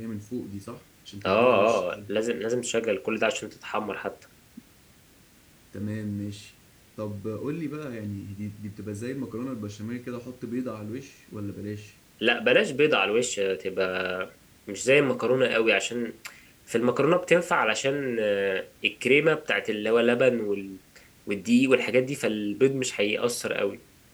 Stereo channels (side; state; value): both; identical; correlation 1.00